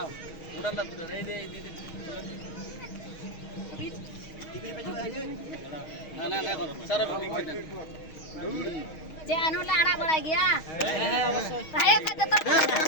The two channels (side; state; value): right; late; 6.3 ms